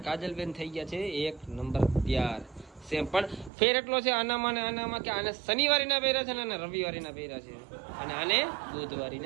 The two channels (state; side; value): drops out; left; at 3.5 s